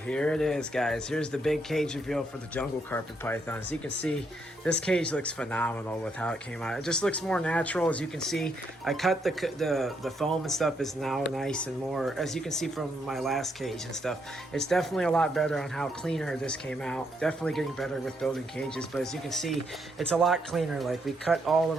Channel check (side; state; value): both; normal; correlation 0.76